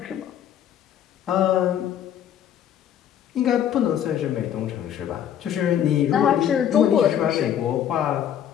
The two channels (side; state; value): right; quieter; 9.8 dB